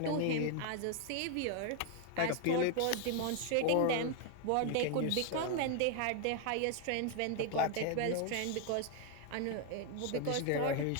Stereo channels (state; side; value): different; both; correlation 0.00